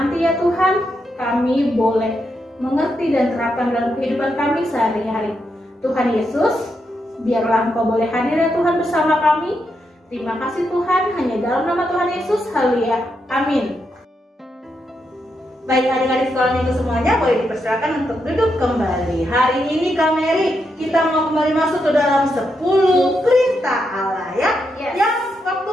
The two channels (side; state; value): both; normal; correlation 0.82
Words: ya Tuhan, kami boleh mengerti dan terapkan dalam kehidupan kami sehari-hari. Tuhan Yesus, biarlah Engkau boleh hadir ya Tuhan bersama kami. Terima kasih Tuhan, hanya dalam nama Tuhan Yesus, haleluya, amin. Baik adik-adik sekolah minggu semuanya boleh dipersilakan untuk duduk kembali. Hari ini Kak Mary kita mau kembali masuk ke dalam 10 perintah Allah ya. Yes. Yang waktu